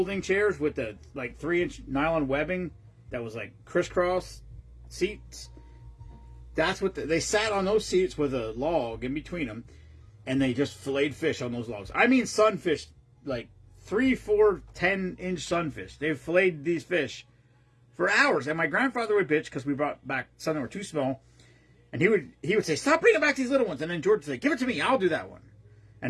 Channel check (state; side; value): identical; both; correlation 1.00